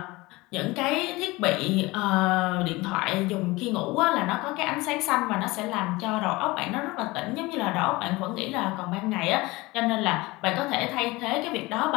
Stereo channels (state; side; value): quieter; right; 21.8 dB